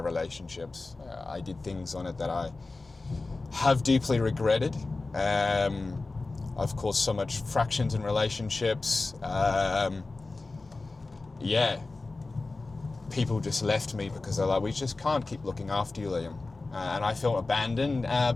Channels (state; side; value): quieter; right; 3.5 dB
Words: I did things on it that I have deeply regretted. I've caused so much fractions in relationships. People just left me because they're like, we just can't keep looking after you, Liam. And I felt abandoned,